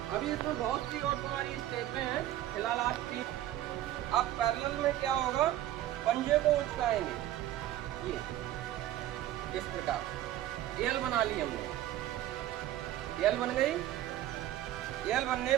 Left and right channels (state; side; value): quieter; left; 13.4 dB